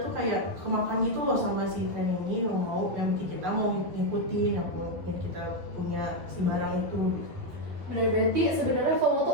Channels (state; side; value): late; left; 11 ms